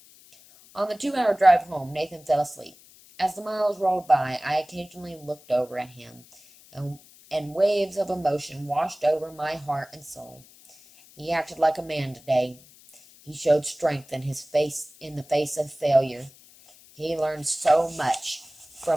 On the 2-hour drive home, Nathan fell asleep. As the miles rolled by, I occasionally looked over at him, and waves of emotion washed over my heart and soul. He acted like a man today. He showed strength in the face of failure. He learned so much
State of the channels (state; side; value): noise; left; hiss, 24 dB below the sound